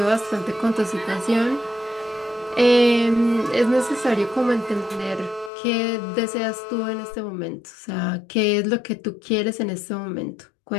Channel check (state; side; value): drops out; right; at 5.5 s